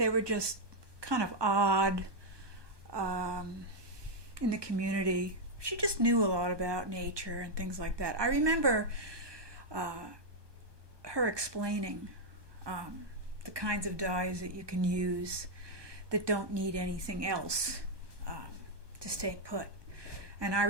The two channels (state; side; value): late; left; 1.2 ms